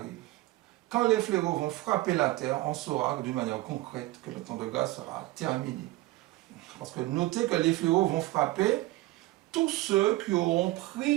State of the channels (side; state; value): left; quieter; 18.4 dB